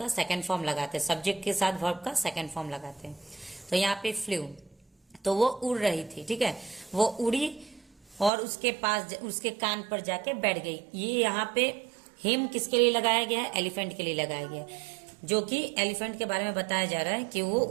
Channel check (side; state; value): left; drops out; at 8.3 s